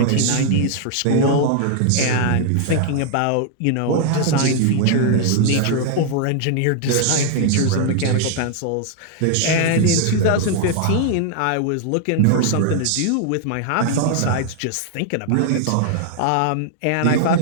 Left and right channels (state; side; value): different; both; correlation 0.00